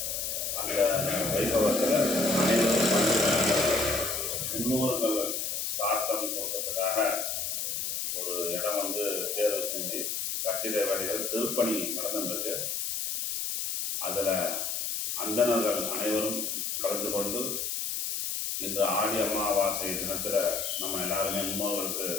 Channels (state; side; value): noise; left; hiss, 2 dB below the sound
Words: அந்த வைபவத்தில் அனைவரும் முன்னோர்கள் சிராத்தம் கொடுக்கறதுக்காக ஒரு இடம் வந்து தேர்வு செஞ்சு கட்டிட வேலைகள் திருப்பணி நடந்துருக்கு. அதில் அந்தணர்கள் அனைவரும் கலந்து கொண்டு இன்று ஆடி அமாவாசை தினத்தில் நம்ம எல்லாருமே முன்னோர்களுக்கு